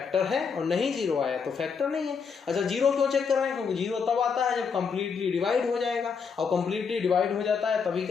है, और नहीं 0 आया तो फैक्टर नहीं है। अच्छा 0 क्यों चेक कर रहे हैं, क्योंकि 0 तब आता है जब कंप्लीटली डिवाइड हो जाएगा, और कंप्लीटली डिवाइड हो जाता है तभी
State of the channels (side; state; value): right; quieter; 5.9 dB